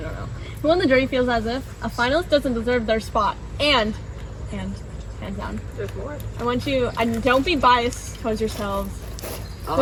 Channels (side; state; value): both; identical; correlation 1.00